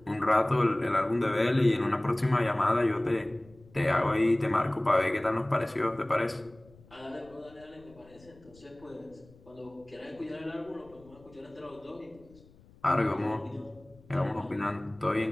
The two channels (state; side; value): noise; left; rumble, 26 dB below the sound